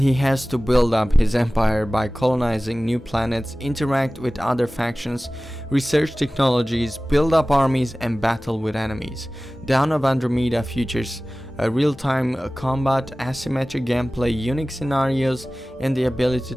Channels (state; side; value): normal; both; correlation 0.97